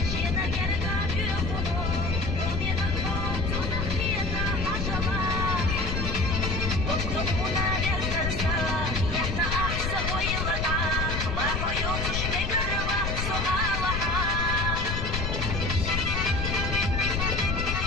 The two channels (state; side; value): noise; left; rumble, 2 dB below the sound